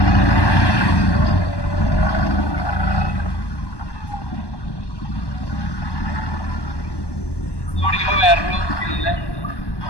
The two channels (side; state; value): right; late; 1.1 ms